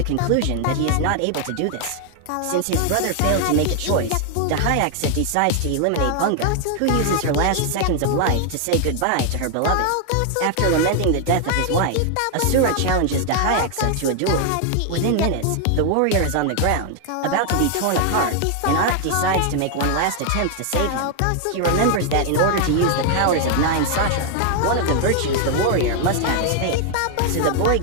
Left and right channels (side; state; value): both; different; correlation 0.00